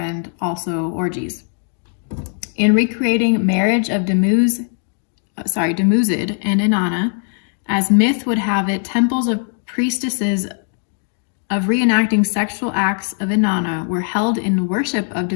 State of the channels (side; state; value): right; silent; 56 dB below the other